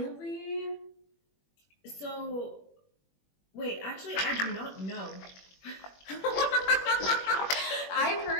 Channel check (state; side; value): late; right; 21 ms